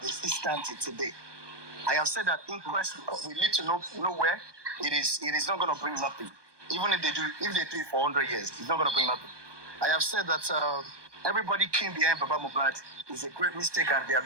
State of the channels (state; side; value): late; left; 1.2 ms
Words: is still standing today. I have said that inquest, we need to know where it is not going to bring nothing. Even if they do it for 100 years, it's not going to bring nothing. I have said that everybody came behind Baba Mohbad is a great mistake and they are